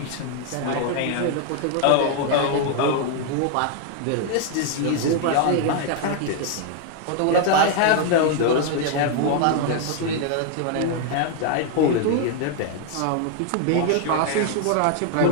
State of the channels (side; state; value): both; different; correlation 0.00